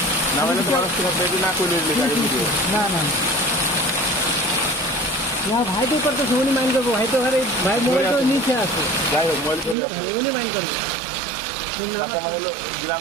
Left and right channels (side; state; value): left; drops out; at 9.8 s